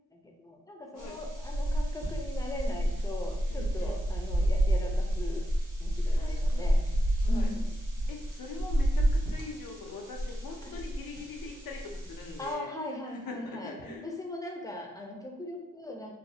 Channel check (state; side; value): normal; both; correlation 0.87